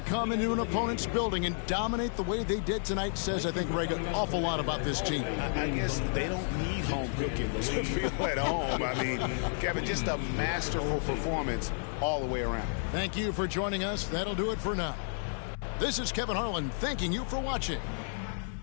come into an opponent's building and dominate the way they did tonight says, I think, Greg, an awful lot about this team. I guess they don't need home cooking to feel at home. I mean, Kevin, just a masterful performance all the way around. Thank you for joining us. That'll do it for now. This is Kevin Harlan thanking you for watching.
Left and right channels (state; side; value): silent; right; digital silence